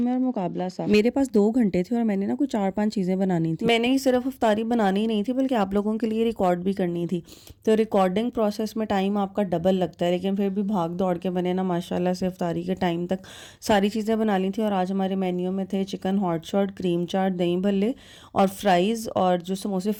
है और मुकाबला सा। मेरे पास 2 घंटे थे और मैंने ना कुछ 4-5 चीज़ें बनानी थी। मैंने ही सिर्फ इफ्तारी बनानी नहीं थी बल्कि आप लोगों के लिए रिकॉर्ड भी करनी थी। तो रिकॉर्डिंग प्रोसेस में टाइम आपका डबल लगता है, लेकिन फिर भी भाग दौड़ के मैंने ना माशाल्लाह से इफ्तारी के टाइम तक सारी चीज़ें बना ली थी। और आज हमारे मेन्यू में थे चिकन हॉट शॉट, क्रीम चाट, दही भल्ले और फ्राइज़, और जो समोसे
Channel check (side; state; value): both; identical; correlation 1.00